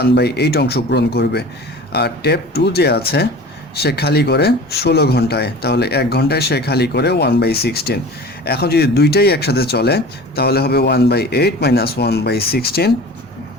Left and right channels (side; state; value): both; normal; correlation 0.39